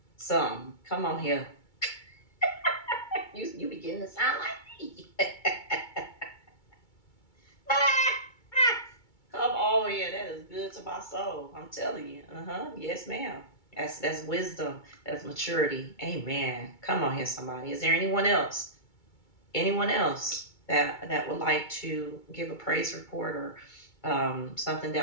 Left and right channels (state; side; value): late; right; 2.2 ms